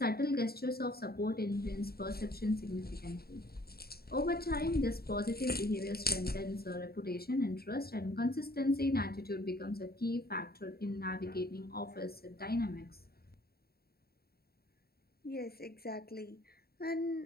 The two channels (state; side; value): late; right; 0.45 ms